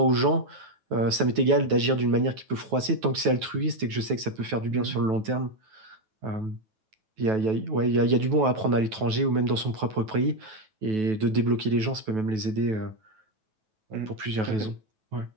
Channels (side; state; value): left; late; 9.2 ms